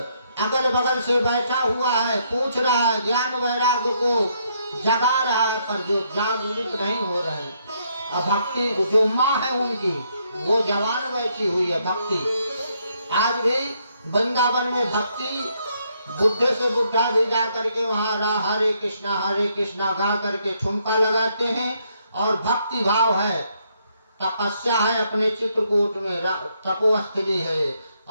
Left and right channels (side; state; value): both; inverted; correlation -0.73